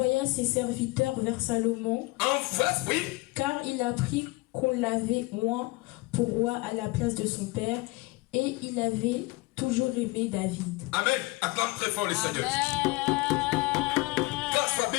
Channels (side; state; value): right; quieter; 23.1 dB